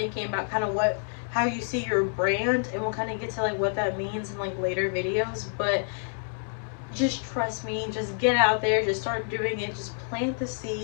about kind of how you see your brand, and we'll kind of get to like what that means in like later videos. But just trust me, just get out there, just start doing it, just plant the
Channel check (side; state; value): right; silent; digital silence